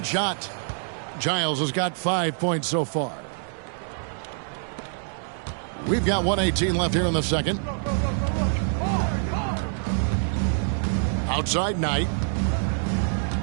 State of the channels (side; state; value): left; silent; 61 dB below the other